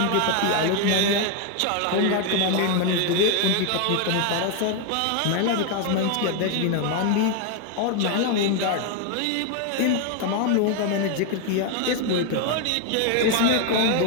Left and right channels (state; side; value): different; both; correlation 0.01